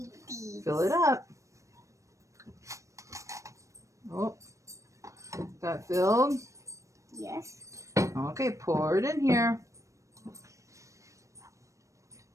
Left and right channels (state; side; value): late; left; 0.15 ms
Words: these. Fill it up. Oh, got filled? Yes. Okay, pour it in here.